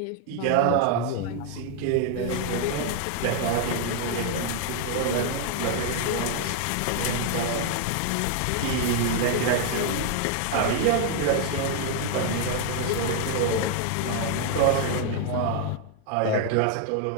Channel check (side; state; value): both; different; correlation 0.00